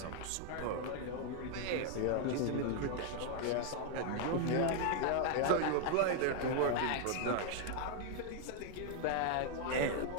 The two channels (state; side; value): different; both; correlation 0.00